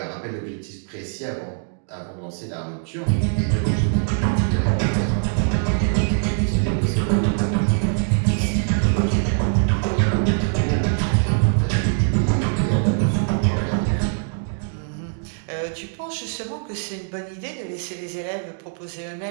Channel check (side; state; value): left; silent; 64 dB below the other